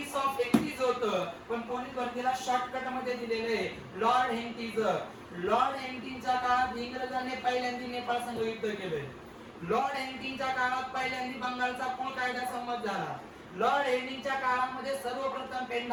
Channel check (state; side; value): identical; both; correlation 1.00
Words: ऑफ हेंटिज होतं, पण पोलीस भरतीला शॉर्टकट मध्ये दिलेलं आहे लॉर्ड हेंटिज. लॉर्ड हेंटिजच्या काळात इंग्रजांनी पहिल्यांदा नेपाळ संघ युद्ध केलंय. लॉर्ड हेंटिजच्या काळात पहिल्यांदा बंगालचा कुळ कायदा संमत झाला. लॉर्ड हेंटिजच्या काळामध्ये सर्वप्रथम